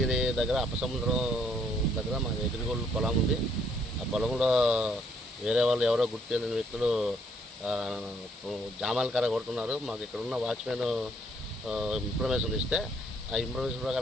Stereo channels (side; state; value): both; normal; correlation 0.68